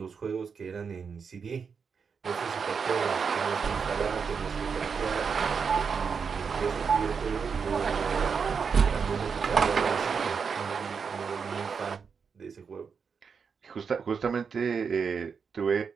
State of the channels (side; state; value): left; quieter; 5.9 dB